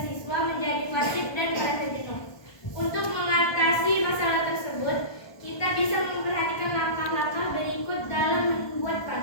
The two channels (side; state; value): right; late; 1.2 ms